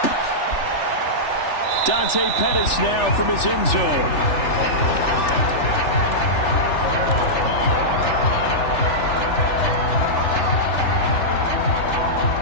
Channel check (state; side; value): late; right; 3.4 ms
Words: Dante Pettis now from his end zone.